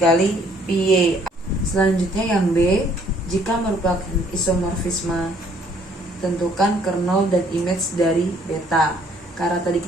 Pi Y. Selanjutnya yang B, jika merupakan isomorfisme, tentukan kernel dan image dari beta. Karena tadi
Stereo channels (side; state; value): both; normal; correlation 0.63